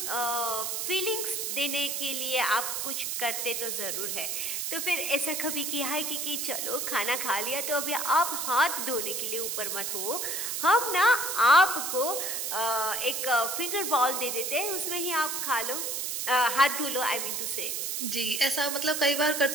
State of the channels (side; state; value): right; noise; hiss, 2 dB below the sound